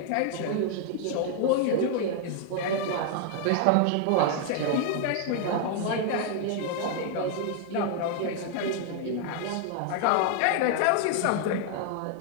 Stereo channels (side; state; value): both; different; correlation 0.00